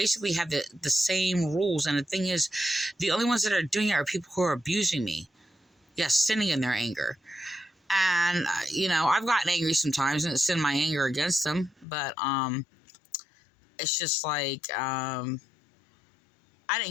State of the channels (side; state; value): right; drops out; at 11.9 s